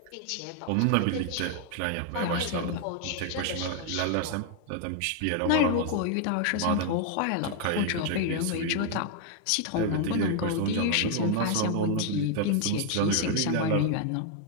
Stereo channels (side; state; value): both; different; correlation 0.00